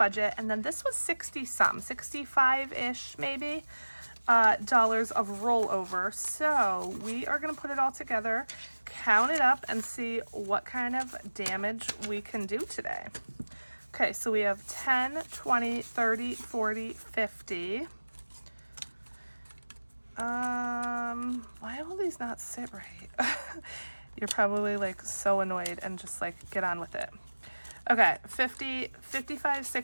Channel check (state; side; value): inverted; both; correlation -1.00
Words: and then this was 60 some, 65-ish maybe, dollars of rollover. So we are gonna put it all together, count it up, and see what kind of damage we can do today. Okay, so we have 10, 20, 30, 40, 50. Why will these not sit right? You're probably like so annoyed and just like get on with it. Okay, 50, 55,